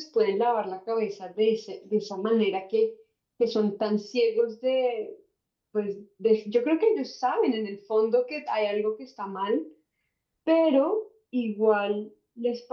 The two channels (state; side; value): identical; both; correlation 1.00